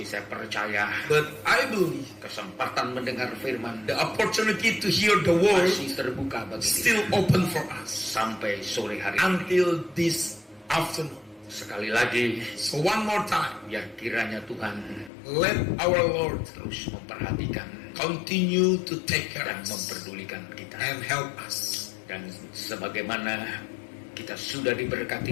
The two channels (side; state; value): right; drops out; at 15.1 s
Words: saya percaya But I believe kesempatan mendengar firman the opportunity to hear the word masih terbuka bagi still kita open for us sampai sore hari ini. until this afternoon. Sekali lagi, So one more time, biar kiranya Tuhan let our Lord terus memperhatikan continue to take care dan of us memperdulikan kita. and help us. Dan sebagaimana kita sudah